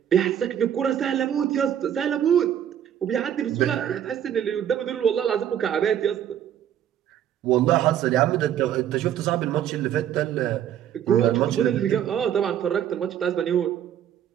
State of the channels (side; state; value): left; quieter; 10.0 dB